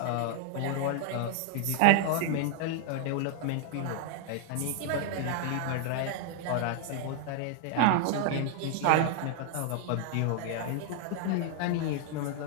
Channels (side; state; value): both; different; correlation 0.00